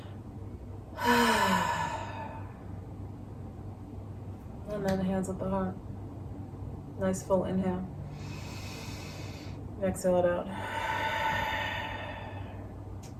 And then hands at the heart. Nice full inhale. Exhale it out.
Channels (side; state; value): both; identical; correlation 1.00